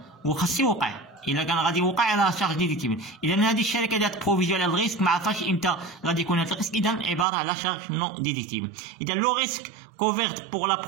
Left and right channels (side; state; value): left; drops out; at 7.2 s